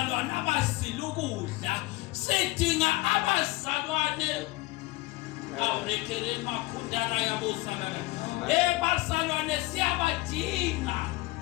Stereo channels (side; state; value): right; quieter; 20.5 dB